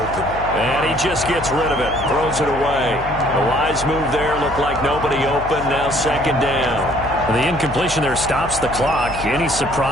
And he just gets rid of it, throws it away. The wise move there, looked like nobody open, now second down. The incompletion there stops the clock. Any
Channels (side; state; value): left; noise; hum, 11 dB below the sound